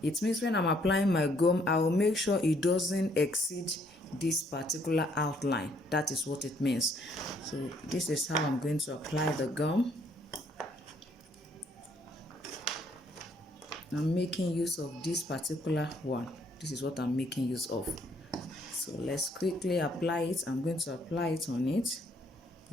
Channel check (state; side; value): normal; both; correlation 0.67